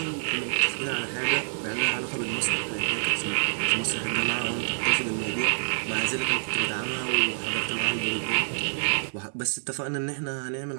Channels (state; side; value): silent; left; digital silence